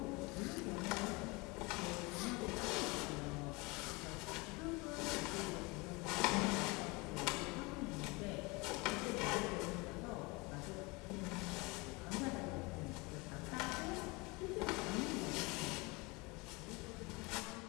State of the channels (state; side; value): quieter; right; 26.1 dB